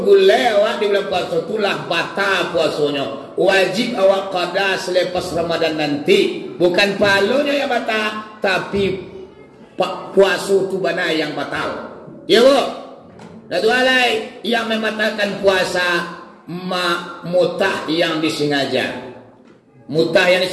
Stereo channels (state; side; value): identical; both; correlation 1.00